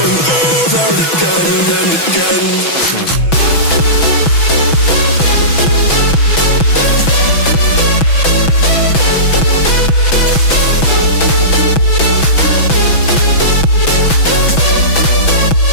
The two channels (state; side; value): late; right; 6.1 ms